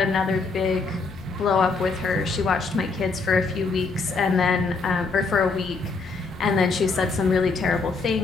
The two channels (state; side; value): quieter; right; 4.1 dB